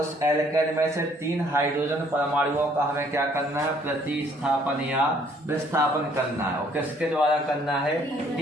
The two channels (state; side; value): normal; both; correlation 0.62